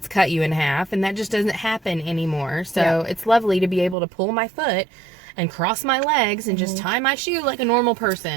cut you in half, and that just doesn't happen anymore. So it's lovely to be able to pull my foot and cross my legs and just tie my shoe like a normal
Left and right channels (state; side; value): drops out; left; at 4.0 s